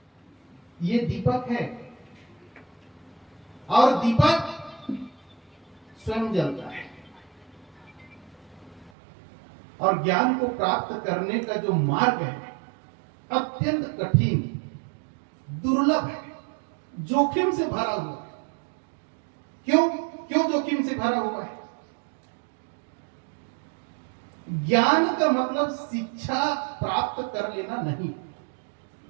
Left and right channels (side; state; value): left; drops out; at 8.9 s